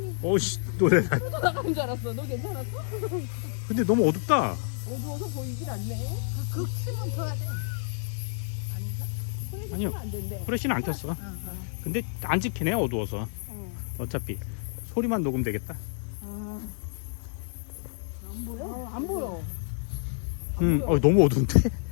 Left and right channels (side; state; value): right; silent; digital silence